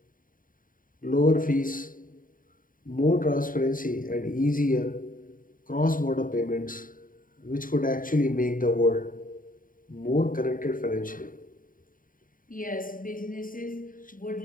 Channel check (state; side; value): late; right; 0.40 ms